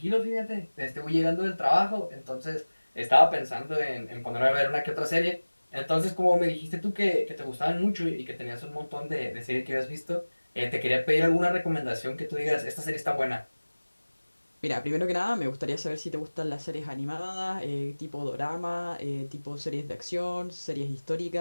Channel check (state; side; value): inverted; both; correlation -1.00